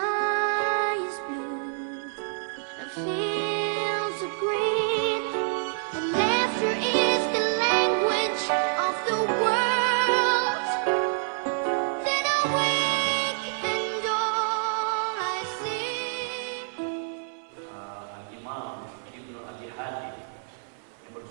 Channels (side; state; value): left; silent; 60 dB below the other